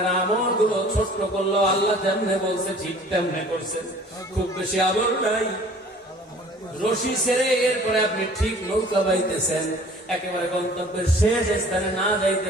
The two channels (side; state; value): both; normal; correlation 0.50